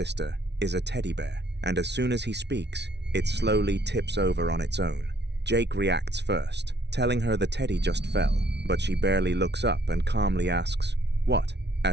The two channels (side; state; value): left; late; 0.50 ms